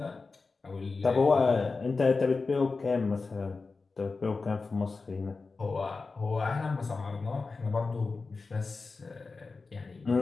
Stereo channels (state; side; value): quieter; right; 4.1 dB